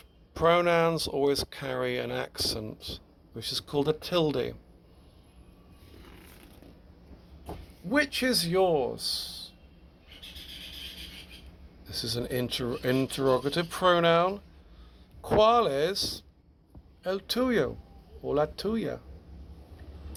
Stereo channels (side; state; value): both; identical; correlation 1.00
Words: pronouns always carry an accent, which is called a tilde. Which is yours? This is an interrogative pronoun. ¿Cuál es el tuyo o la tuya?